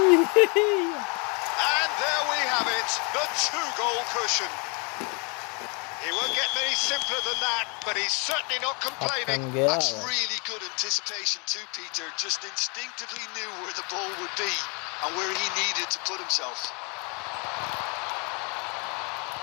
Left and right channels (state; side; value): quieter; right; 33.2 dB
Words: And there we have it, the 2-goal cushion. He won't get many simpler than that, but he's certainly not complaining. That's really good anticipation too, Peter. Just instinctively knew where the ball would be and where he needed to put himself.